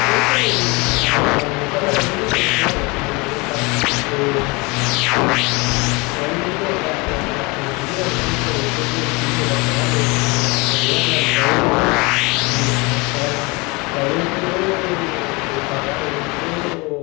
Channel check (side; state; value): right; quieter; 26.8 dB